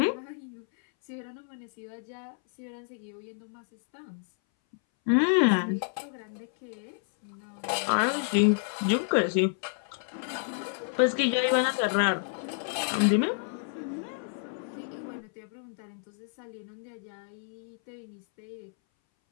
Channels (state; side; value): silent; right; 58 dB below the other